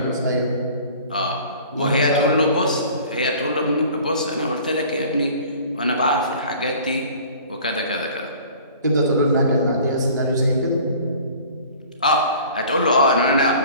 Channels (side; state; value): both; inverted; correlation -0.47